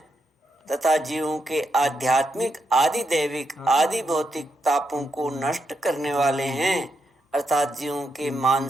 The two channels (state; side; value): normal; both; correlation 0.82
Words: तथा जीवों के आध्यात्मिक, आदि दैविक, आदि भौतिक तापों को नष्ट करने वाले हैं, अर्थात जीवों के